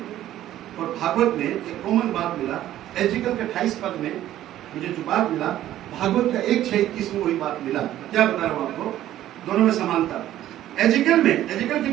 और भागवत में एक कॉमन बात मिला। एजिकल के 28 पद में मुझे जो बात मिला, भागवत का 1:21 में वही बात मिला। क्या बता रहा हूं आपको, दोनों में समानता। एजिकल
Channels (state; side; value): quieter; left; 13.0 dB